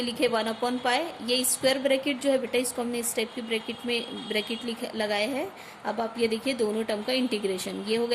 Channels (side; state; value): both; identical; correlation 1.00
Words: लिखे 1 अपॉन पाई. ये स्क्वायर ब्रैकेट जो है बेटा इसको हमने इस टाइप की ब्रैकेट लगाए हैं. अब आप ये देखिए दोनों टर्म का इंटीग्रेशन ये हो